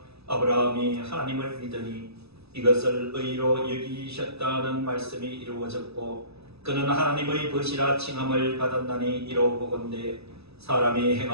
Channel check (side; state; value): left; late; 0.78 ms